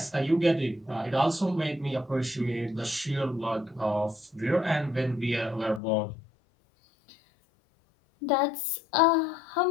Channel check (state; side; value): drops out; right; at 5.8 s